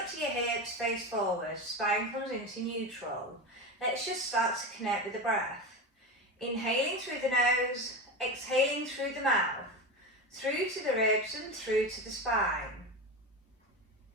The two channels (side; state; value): both; normal; correlation 0.22